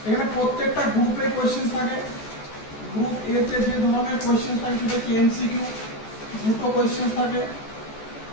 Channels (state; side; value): late; right; 14 ms